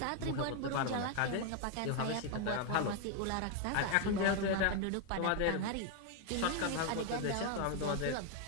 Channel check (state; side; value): different; both; correlation 0.00